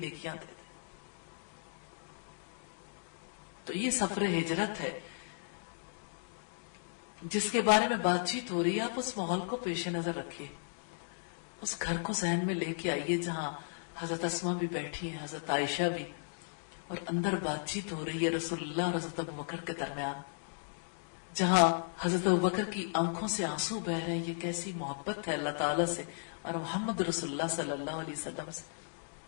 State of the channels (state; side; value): silent; right; digital silence